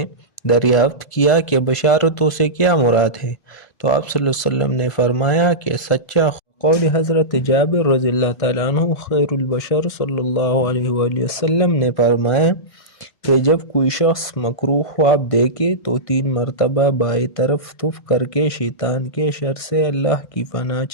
دریافت کیا کہ بشارتوں سے کیا مراد ہے، تو آپ صلی اللہ علیہ وسلم نے فرمایا کہ سچا قول حضرت جابر رضی اللہ تعالیٰ عنہ خیر البشر صلی اللہ علیہ وآلہ وسلم نے فرمایا کہ جب کوئی شخص مکروہ خواب دیکھے تو 3 مرتبہ بائیں طرف تف کر کے شیطان کے شر سے اللہ کی پناہ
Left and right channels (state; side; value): late; right; 1.5 ms